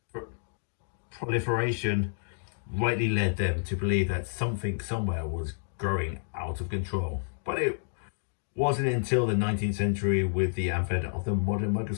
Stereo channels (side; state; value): right; silent; digital silence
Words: proliferation rightly led them to believe that something somewhere was growing out of control. But it wasn't until the 19th century, with the advent of the modern